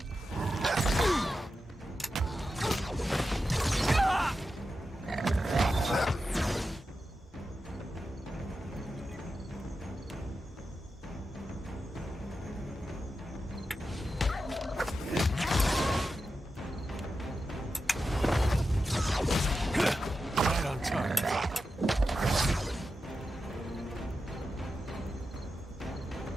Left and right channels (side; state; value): both; normal; correlation 0.90